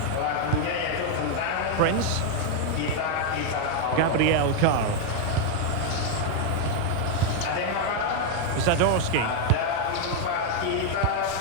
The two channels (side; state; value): both; different; correlation 0.00